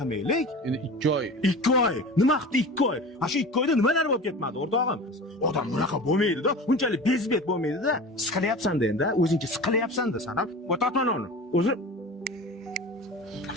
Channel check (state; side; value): normal; both; correlation 0.34